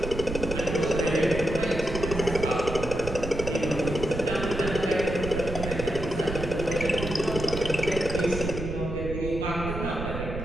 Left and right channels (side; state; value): right; noise; rumble, 7 dB below the sound